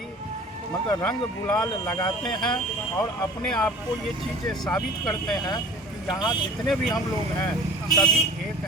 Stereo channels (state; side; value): normal; both; correlation 0.43